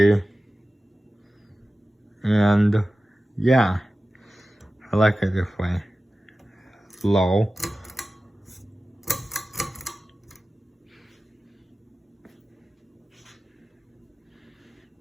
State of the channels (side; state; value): both; normal; correlation 0.95